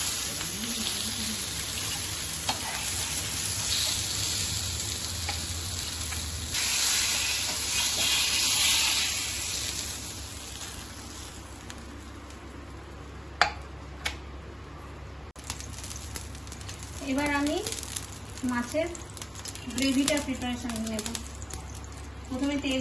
এবার আমি মাছের গ্রেভিটা প্রিপারেশন নেব। প্রথমে তেল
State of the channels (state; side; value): identical; both; correlation 1.00